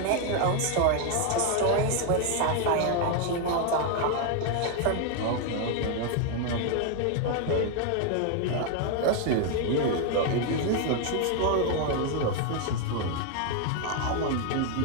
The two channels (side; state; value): both; different; correlation 0.01